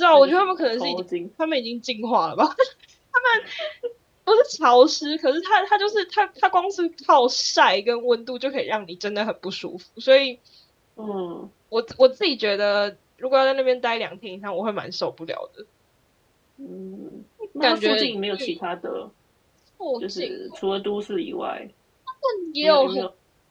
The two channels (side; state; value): both; identical; correlation 1.00